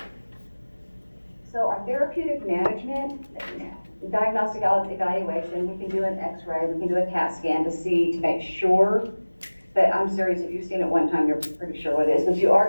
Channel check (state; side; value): inverted; both; correlation -1.00